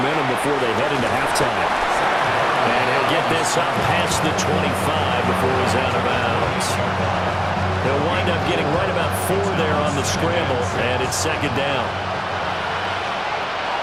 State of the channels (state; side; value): identical; both; correlation 1.00